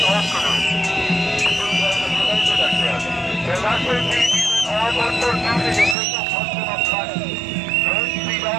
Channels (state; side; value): drops out; left; at 6.0 s